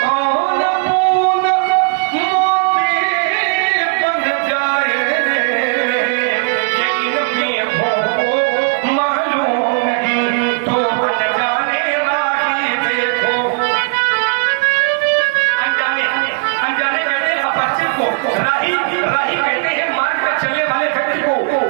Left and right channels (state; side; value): quieter; left; 37.0 dB